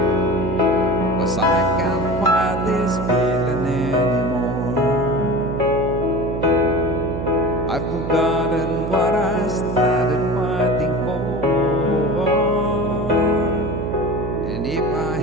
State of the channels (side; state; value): right; noise; hum, 4 dB below the sound